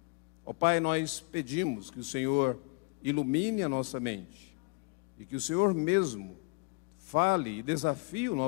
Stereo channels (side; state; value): right; quieter; 30.2 dB